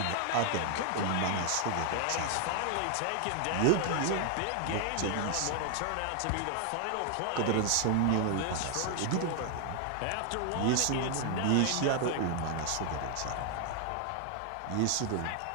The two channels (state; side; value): different; both; correlation 0.00